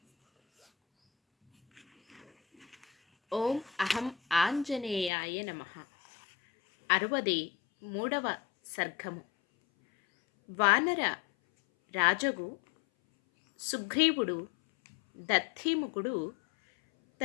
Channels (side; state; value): right; drops out; at 5.1 s